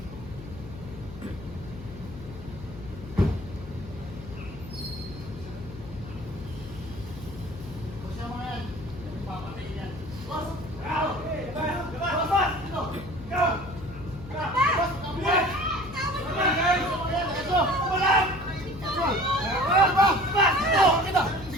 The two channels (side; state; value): left; noise; hum, 14 dB below the sound